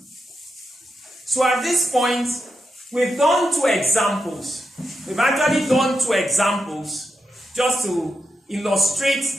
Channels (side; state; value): both; normal; correlation 0.87